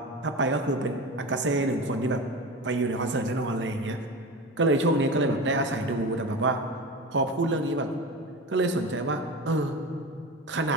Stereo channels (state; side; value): normal; both; correlation 0.28